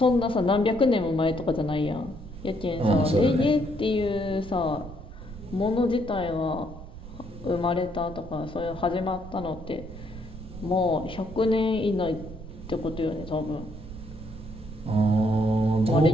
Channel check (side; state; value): right; noise; rumble, 13 dB below the sound